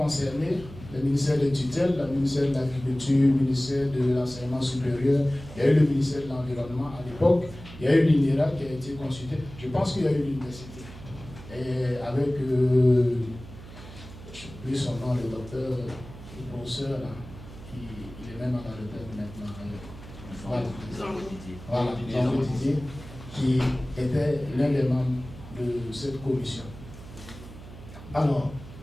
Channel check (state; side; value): noise; right; hum, 16 dB below the sound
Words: le ministère de tutelle, le ministère de l'Agriculture, le ministère de l'Enseignement supérieur, il y a eu le ministère de l'Environnement à l'époque, il y a eu l'INERA qui a été consulté. Je pense qu'il y a eu l'université. Et avec, je n'ai plus son nom, le docteur, le professeur, là, il est même à la retraite maintenant. Voilà, Jean Didier, qui était l'un des membres de cette commission. Alors,